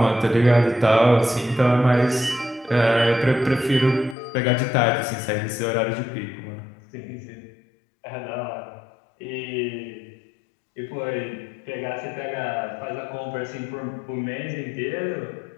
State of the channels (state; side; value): drops out; right; at 4.2 s